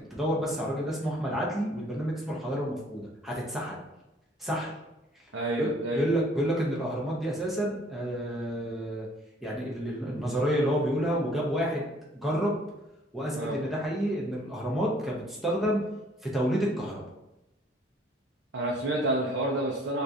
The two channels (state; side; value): normal; both; correlation 0.58